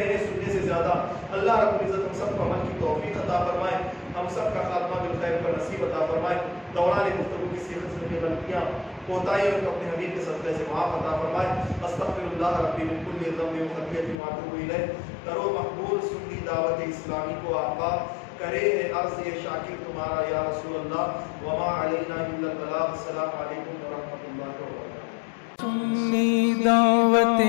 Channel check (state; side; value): drops out; right; at 14.2 s